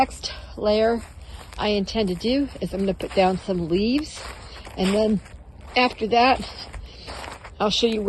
layer I intend to do is I'm going to put down some leaves, and then after that I'll show you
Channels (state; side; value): identical; both; correlation 1.00